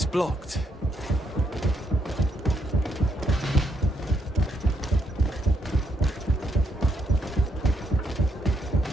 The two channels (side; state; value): both; normal; correlation 0.76